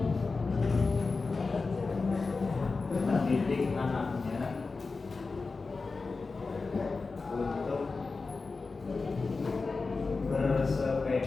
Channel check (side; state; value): right; quieter; 4.1 dB